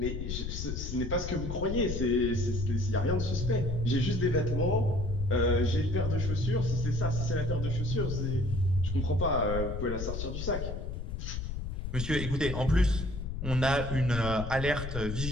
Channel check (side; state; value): left; noise; rumble, 4 dB below the sound